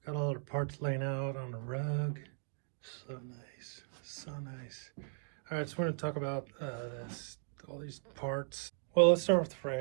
got all our parts laying out on the rug. So nice, so nice. All right, so we're gonna talk about all these parts. Well, let's start with the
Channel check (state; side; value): silent; left; digital silence